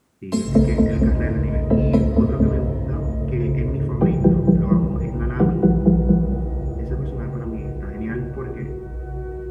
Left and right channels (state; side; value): identical; both; correlation 1.00